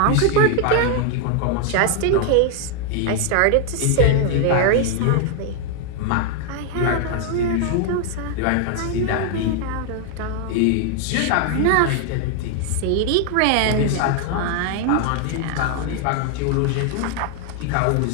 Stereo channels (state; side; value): different; both; correlation 0.00